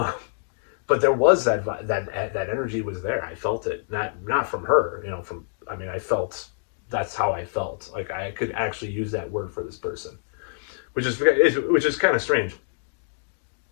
but there was that energy was there. I felt it, not from her, from, I mean, I felt, that's how I felt. Like I could actually use that word for this person, which is kind of strange,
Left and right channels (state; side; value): silent; right; digital silence